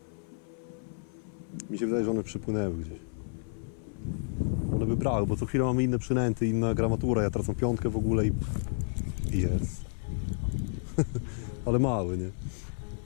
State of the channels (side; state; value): right; silent; 57 dB below the other